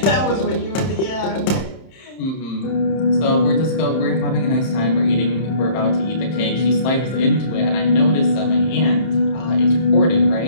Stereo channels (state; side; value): late; right; 31 ms